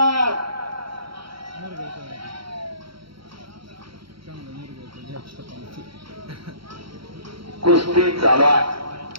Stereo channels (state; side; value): late; left; 0.75 ms